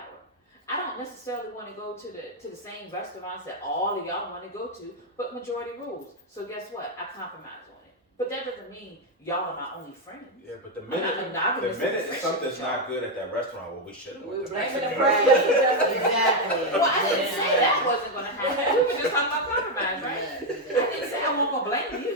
I don't necessarily want to go to the same restaurants that all of y'all want to go to, but majority rules. So guess what? I compromise on it. But that doesn't mean y'all are my only friends. Yeah, but the I'm not minute monogamous in friendship, something's y'all. not good at that restaurant, well, we should have went to Blaming the Mexican. friend. Exactly. Well, I didn't say that wasn't going to happen. We were just talking about compromise, right? I didn't say I wasn't going to blame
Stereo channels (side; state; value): both; normal; correlation 0.04